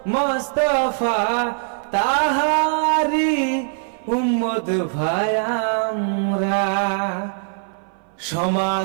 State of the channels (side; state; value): left; silent; 58 dB below the other